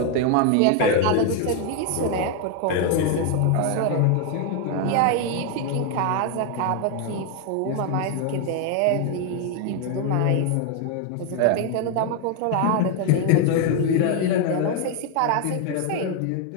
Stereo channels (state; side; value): different; both; correlation 0.01